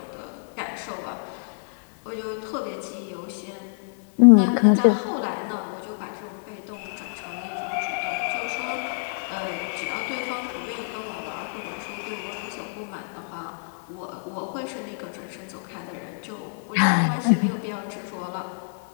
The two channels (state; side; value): silent; right; 60 dB below the other